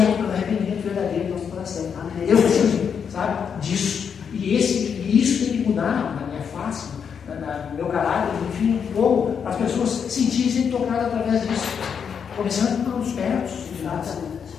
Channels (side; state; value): right; quieter; 7.0 dB